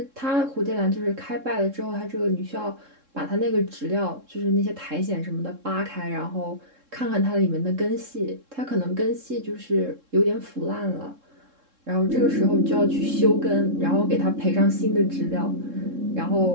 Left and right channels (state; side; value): late; left; 3.7 ms